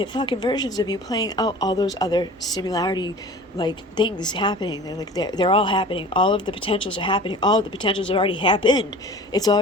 fucking versions of you playing out all those other similarity things happening. They're all happening. All of the potentials are happening. All of the potentials have already happened. It's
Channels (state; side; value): normal; both; correlation 0.41